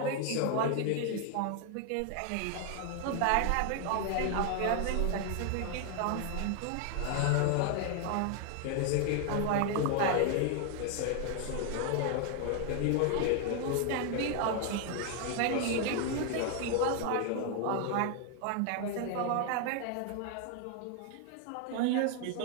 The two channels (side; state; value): both; different; correlation 0.00